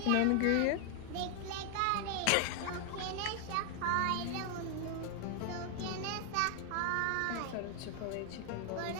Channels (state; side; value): different; both; correlation 0.00